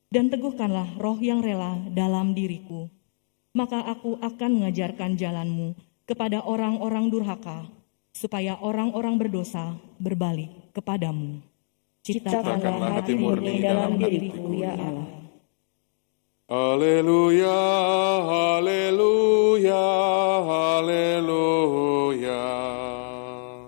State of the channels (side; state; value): right; silent; digital silence